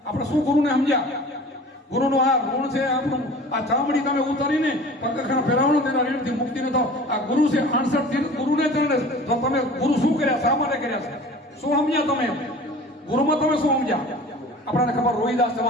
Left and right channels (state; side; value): normal; both; correlation 0.42